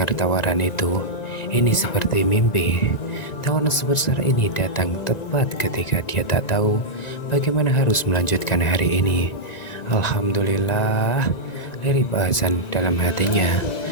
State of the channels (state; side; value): late; right; 1.9 ms